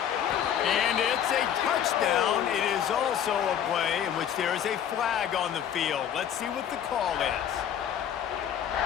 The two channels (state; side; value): quieter; right; 9.4 dB